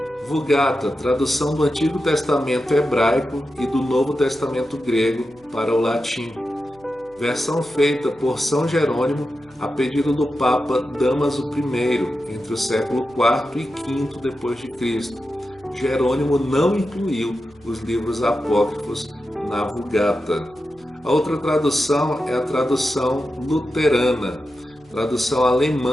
Vulgata, tradução do Antigo Testamento hebraico e do Novo Testamento grego para o latim. Versão feita por São Jerônimo a pedido do Papa Dámaso I, entre o século IV e V depois de Cristo. Jerônimo não incluiu os livros apócrifos na Vulgata. A outra tradução é a tradução luterana, tradução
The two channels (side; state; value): left; noise; hum, 29 dB below the sound